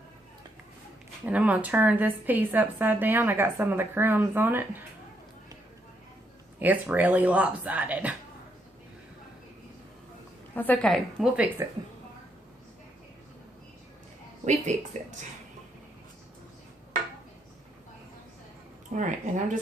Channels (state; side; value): normal; both; correlation 0.76